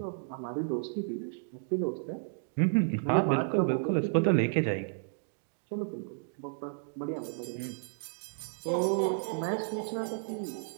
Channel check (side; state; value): left; silent; digital silence